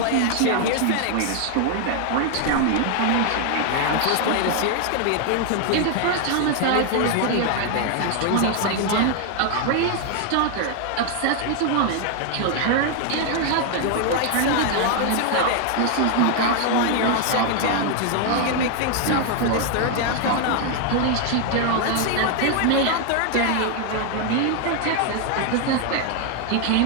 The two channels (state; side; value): different; both; correlation 0.00